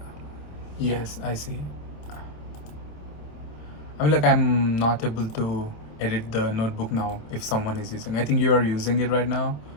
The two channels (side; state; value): right; late; 27 ms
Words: yes, I see. I mean, like, I'm not able to edit the notebook now if someone is using. I think you are using it right now,